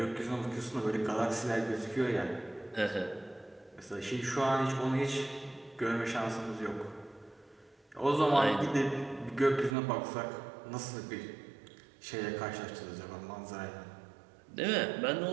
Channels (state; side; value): drops out; left; at 9.8 s